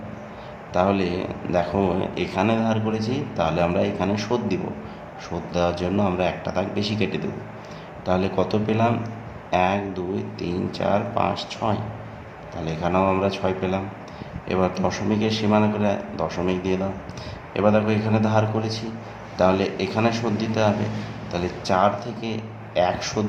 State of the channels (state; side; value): identical; both; correlation 1.00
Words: তাহলে দেখো এখানে ধার করেছি, তাহলে আমরা এখানে শোধ দিব। শোধ দেওয়ার জন্য আমরা একটা দাগ বেশি কেটে দেব। তাহলে কত পেলাম? 1 2 3 4 5 6। তাহলে এখানেও আমরা 6 পেলাম। এবার দশমিকের সীমানা করে দশমিক দিয়ে দাও। এবার দেখো এখানে ধার করেছি, তাহলে এখানে শোধ দিতে হবে। তাহলে 4 থেকে 1 শোধ